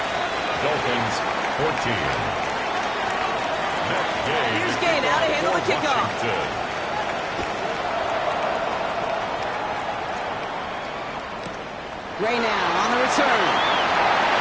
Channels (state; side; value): identical; both; correlation 1.00